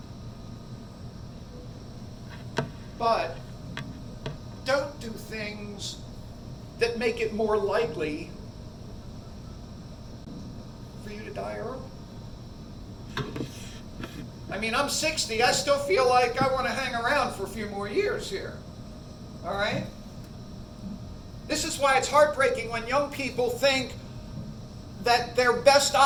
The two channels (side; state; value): both; identical; correlation 1.00